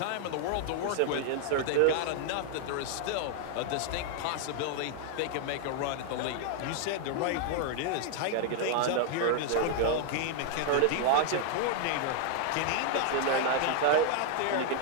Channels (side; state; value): both; different; correlation 0.00